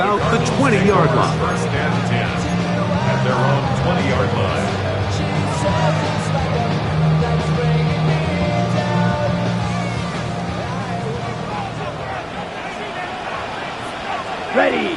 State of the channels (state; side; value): identical; both; correlation 1.00